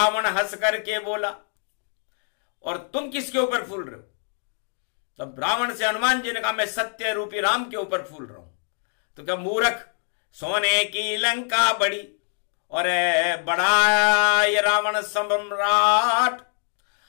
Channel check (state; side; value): silent; right; 55 dB below the other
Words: हंस करके बोला, और तुम किसके ऊपर फूल रहे हो? तब रावण से हनुमान जी ने कहा, मैं सत्य रूपी राम के ऊपर फूल रहा हूं। तो क्या मूर्ख, सोने की लंका बड़ी और बड़ा ये रावण सम्राट,